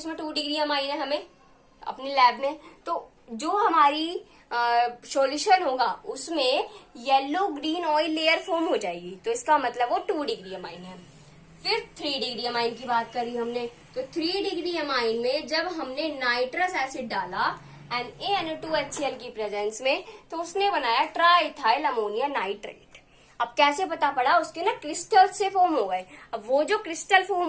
2 डिग्री अमाइन है हमें अपनी लैब में। तो जो हमारी सॉल्यूशन होगा उसमें yellow green oil layer form हो जाएगी, तो इसका मतलब वो 2 डिग्री अमाइन है। फिर 3 डिग्री अमाइन की बात करी हमने, तो 3 डिग्री अमाइन में जब हमने नाइट्रस एसिड डाला NaNO2HCl की प्रेजेंस में, तो उसने बनाया ट्राइथाइल अमोनिया नाइट्रेट। अब कैसे पता पड़ा, उसके ना क्रिस्टल से फॉर्म हो गए। अब वो जो क्रिस्टल फॉर्म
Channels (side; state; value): both; identical; correlation 1.00